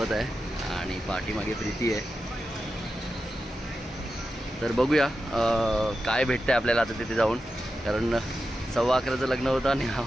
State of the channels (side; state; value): both; normal; correlation 0.90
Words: आहे आणि पाठीमागे प्रीती आहे. तर बघूया काय भेटतंय आपल्याला आता तिथे जाऊन, कारण 11:15चं लग्न होतं आणि